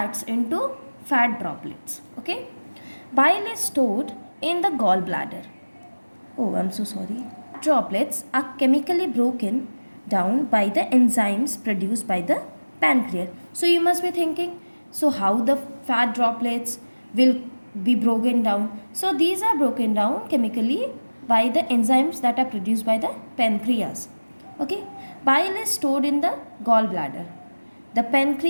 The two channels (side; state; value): both; inverted; correlation -1.00